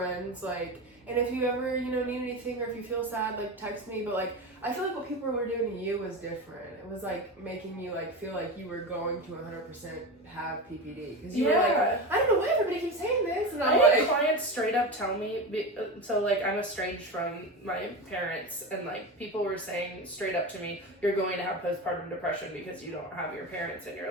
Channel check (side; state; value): both; normal; correlation 0.23